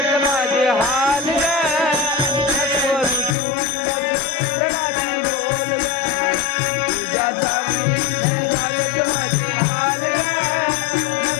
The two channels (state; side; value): drops out; right; at 3.4 s